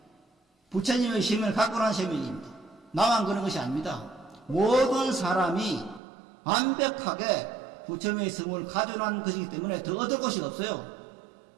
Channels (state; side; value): drops out; left; at 6.0 s